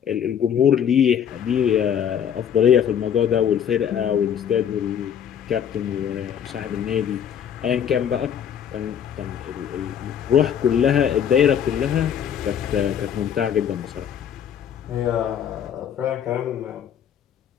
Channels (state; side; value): quieter; right; 8.7 dB